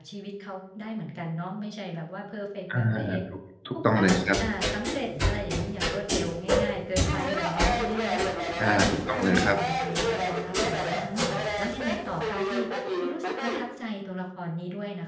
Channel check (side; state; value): both; identical; correlation 1.00